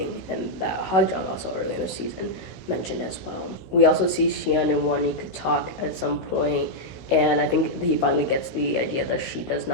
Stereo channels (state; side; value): late; right; 16 ms